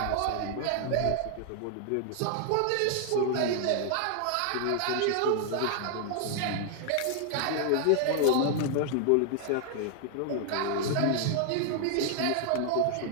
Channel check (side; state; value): both; different; correlation 0.00